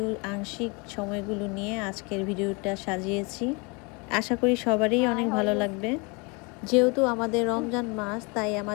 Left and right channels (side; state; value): right; quieter; 29.9 dB